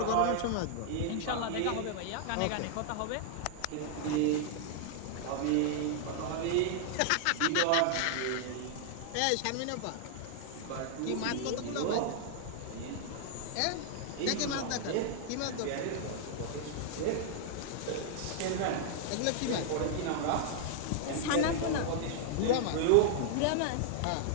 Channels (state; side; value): different; both; correlation -0.01